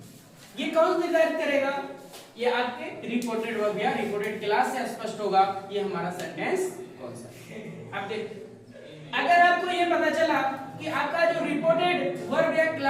ये कौन निर्धारित करेगा? ये आपके रिपोर्टेड वर्ब या रिपोर्टेड क्लास से स्पष्ट होगा ये हमारा सेंटेंस कौन सा है। अब देखिए, अगर आपको ये पता चला कि आपका जो रिपोर्टेड वर्ब या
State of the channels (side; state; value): both; identical; correlation 1.00